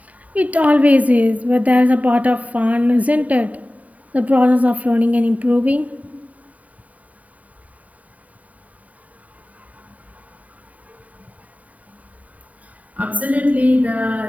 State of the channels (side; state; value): left; late; 0.071 ms